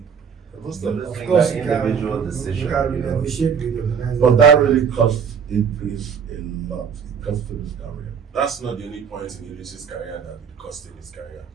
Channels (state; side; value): quieter; left; 6.8 dB